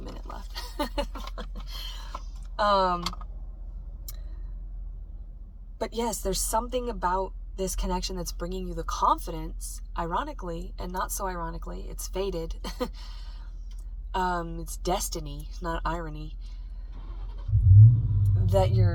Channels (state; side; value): identical; both; correlation 1.00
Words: left. But yes, there's something about this connection that's bringing you the confidence, ironically, and not so ironically. It's fated. It's destiny, not irony, that